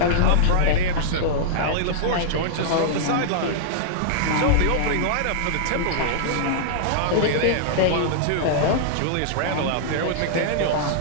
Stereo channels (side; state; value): both; different; correlation -0.02